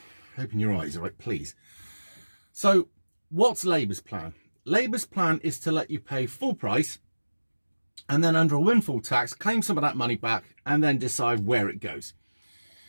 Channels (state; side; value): inverted; both; correlation -1.00